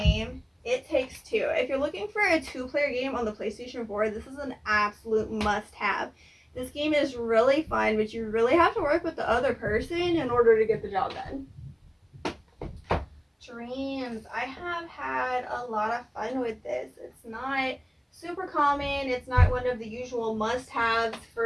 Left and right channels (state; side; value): identical; both; correlation 1.00